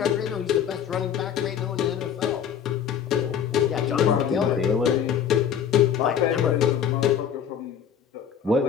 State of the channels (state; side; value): quieter; right; 8.3 dB